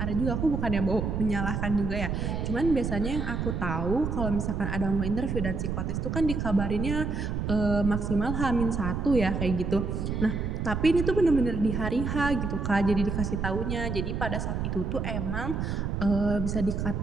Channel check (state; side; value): noise; right; rumble, 2 dB below the sound